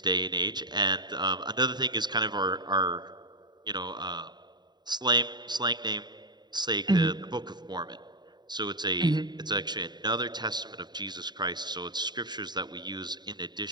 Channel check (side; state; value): left; late; 0.21 ms